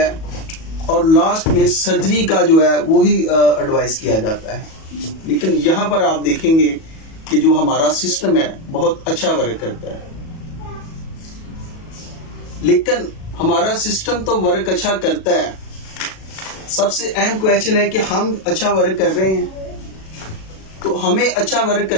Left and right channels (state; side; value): late; right; 37 ms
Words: और लास्ट में सर्जरी का जो है वो ही एडवाइस किया जाता है। लेकिन यहाँ पर आप देखेंगे कि जो हमारा सिस्टम है बहुत अच्छा वर्क करता है, लेकिन हमारा सिस्टम तो वर्क अच्छा करता है, सबसे अहम क्वेश्चन है कि हम अच्छा वर्क कर रहे हैं। तो हमें अच्छा वर्क